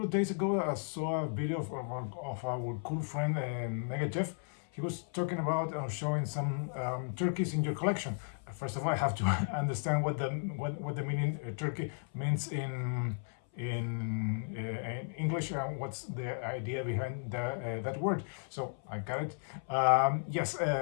of days ago, I saw a video of our cool friend Mega Jeff. He was talking about showing some turkeys in your collection. First of all, I have to understand what the meaning turkey means in English. What's the idea behind that word? So I got it. Yes,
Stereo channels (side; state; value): right; silent; 55 dB below the other